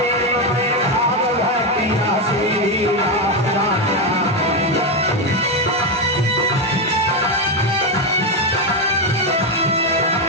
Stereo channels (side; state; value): both; normal; correlation 0.08